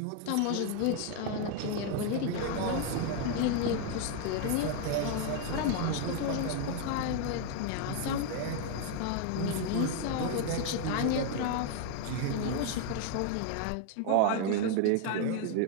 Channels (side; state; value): both; different; correlation 0.00